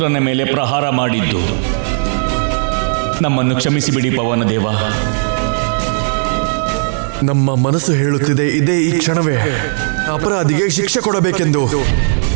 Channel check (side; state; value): left; silent; digital silence